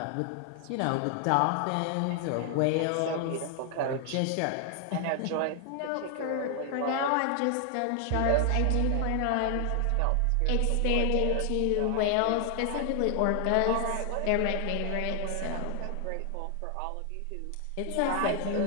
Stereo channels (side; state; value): both; different; correlation 0.00